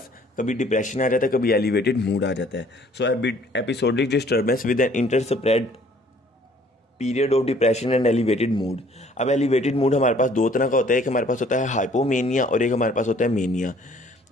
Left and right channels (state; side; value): normal; both; correlation 0.58